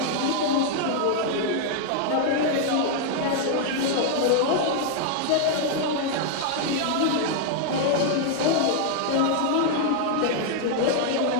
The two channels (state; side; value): different; both; correlation 0.00